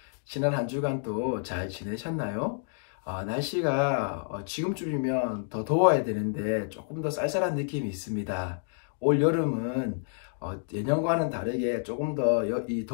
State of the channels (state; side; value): silent; right; digital silence